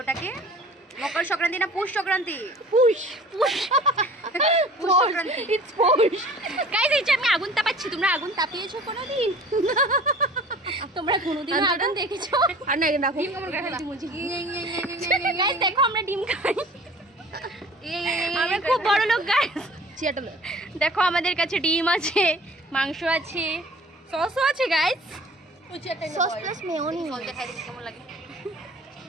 ওটাকে? মকর সংক্রান্তি না পুষ Sankranti? Push Sankranti. It's push. Guys এই যে আমি আগুন তাপাচ্ছি, তোমরা আগুন তাপিয়েছো কোনোদিন? তোমরা কোনোদিন আগুন দেখেছো? আর না রাখো। গাইস দেখো আমরা ডিম খাই, আমরা খুব বড় লোক গাইস। দেখো আমাদের কাছে ডিম আছে, মাংস আছে, সসও আছে গাইস। Sauce plus মেয়োনি। কেমন লাগে?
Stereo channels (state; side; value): normal; both; correlation 0.46